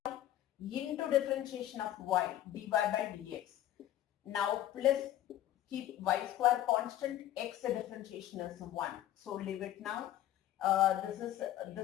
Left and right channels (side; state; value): right; quieter; 12.9 dB